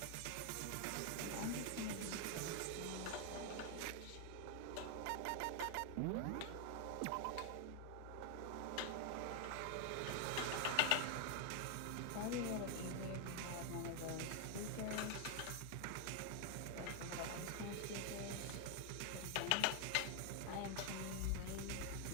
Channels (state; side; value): different; both; correlation 0.00